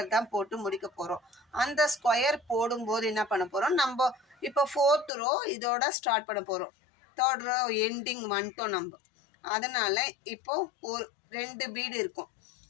தான் போட்டு முடிக்க போகிறோம். அந்த ஸ்கொயர் போடும்போது என்ன பண்ண போகிறோம், நம்ம இப்போ 4th ரோ இதோட ஸ்டார்ட் பண்ண போகிறோம். 3rd ரோ எண்டிங் வந்துட்டோம் நம்ம. அதனால் இப்போ ஒரு 2 பீடு இருக்கும்.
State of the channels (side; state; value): right; drops out; at 5.1 s